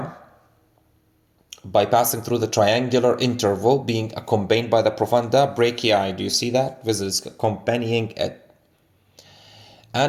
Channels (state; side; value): identical; both; correlation 1.00